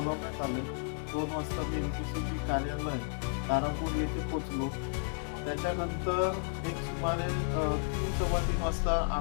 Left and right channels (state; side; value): silent; right; 56 dB below the other